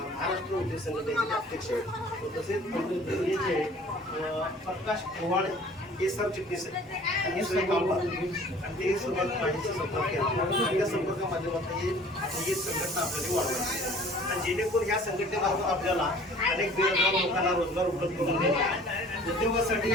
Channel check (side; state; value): both; normal; correlation 0.50